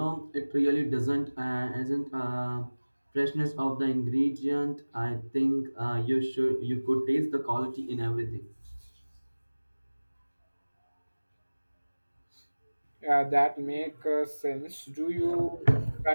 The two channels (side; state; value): both; inverted; correlation -1.00